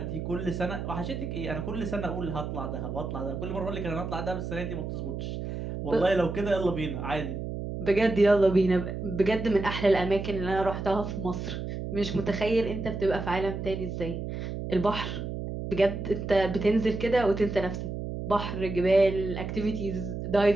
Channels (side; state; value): right; noise; hum, 5 dB below the sound